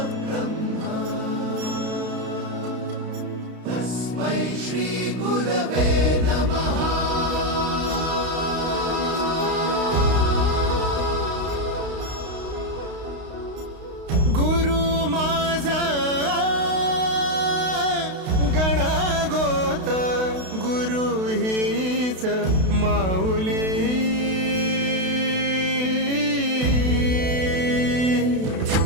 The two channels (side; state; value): left; late; 32 ms